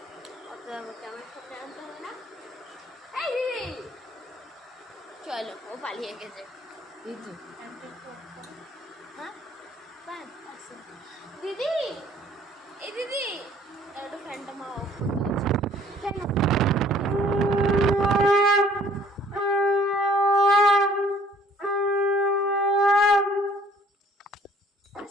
ক্যামেরার সামনে আনতে হবে না। এই দিদি চলো, ও পালিয়ে গেছে। হ্যাঁ দিদি, এই দিদি একটু ফ্যানটা মা অফ করতে গেছে। ফ্যান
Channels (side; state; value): both; normal; correlation 0.57